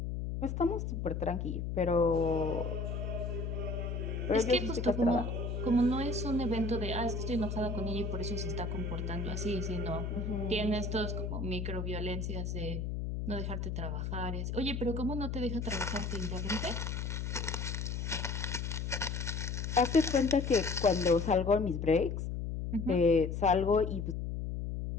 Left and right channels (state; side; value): noise; left; hum, 3 dB below the sound